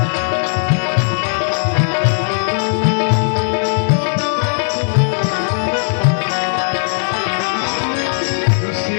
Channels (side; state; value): right; silent; digital silence